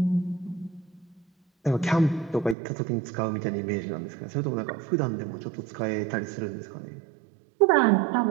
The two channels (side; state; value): left; drops out; at 2.6 s